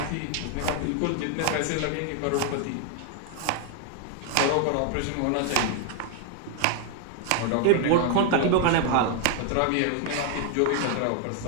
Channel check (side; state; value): both; different; correlation 0.00